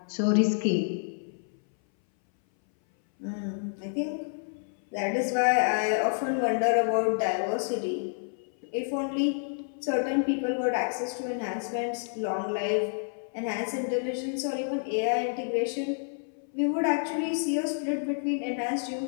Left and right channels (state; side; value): silent; right; 59 dB below the other